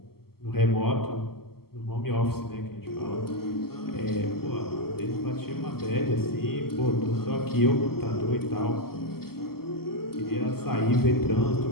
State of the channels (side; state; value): right; late; 0.95 ms